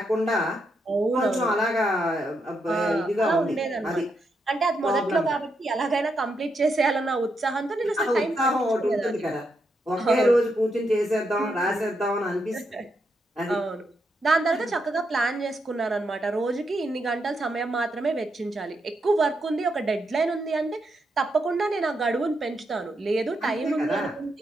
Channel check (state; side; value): normal; both; correlation 0.81